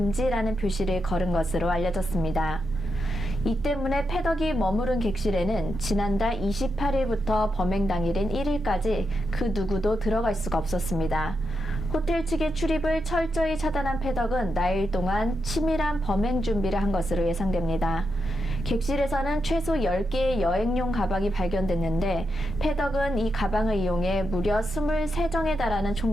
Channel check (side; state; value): both; normal; correlation 0.85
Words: 표시를 걸은 것으로 알려졌습니다. 이 때문에 패덕이 머무른 객실에는 지난달 28일부터 범행 당일인 1일까지 그 누구도 들어갈 수가 없었습니다. 호텔 측의 출입을 철저히 차단한 패덕은 나일 동안 치밀한 범행 준비를 한 것으로 예상됩니다. 객실에서는 최소 10개의 여행용 가방이 발견됐는데 패덕은 이 가방을 이용해 무려 23정에 달하는